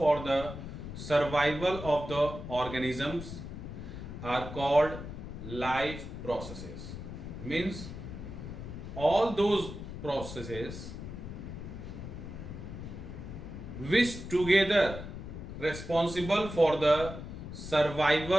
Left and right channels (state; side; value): noise; left; rumble, 9 dB below the sound